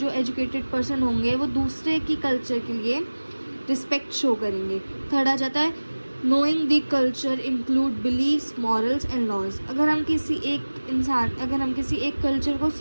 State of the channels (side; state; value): both; inverted; correlation -1.00